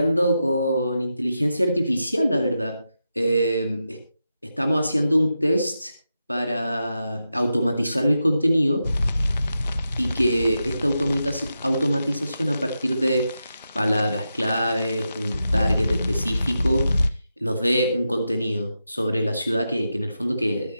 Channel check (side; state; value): both; inverted; correlation -0.88